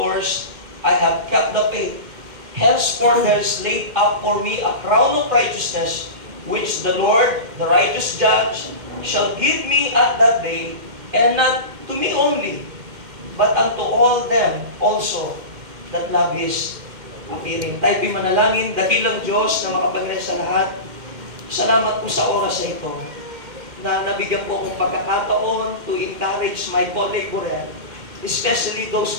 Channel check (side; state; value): left; late; 2.1 ms